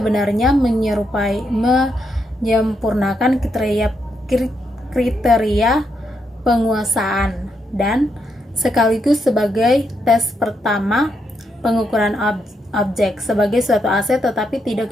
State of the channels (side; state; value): both; normal; correlation 0.80